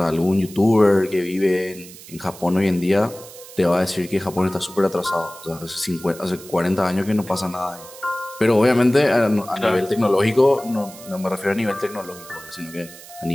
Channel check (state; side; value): noise; right; hiss, 18 dB below the sound